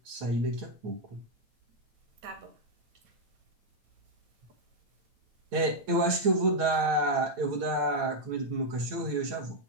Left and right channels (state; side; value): late; left; 9.0 ms